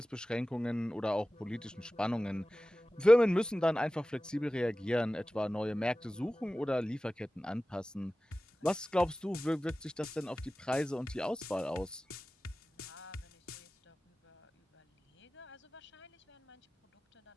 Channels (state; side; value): normal; both; correlation 0.96